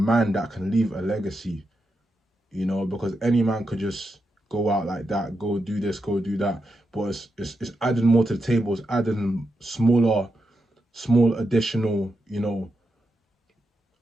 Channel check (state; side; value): normal; both; correlation 0.86